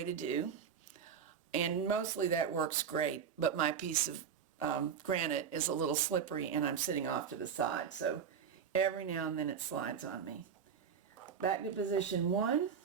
to do. And mostly that works great, but my piece of granite is a little slippery and I'm sitting off to the side, so every now and then it slides on me. Back to position 1,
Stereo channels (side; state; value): left; quieter; 7.2 dB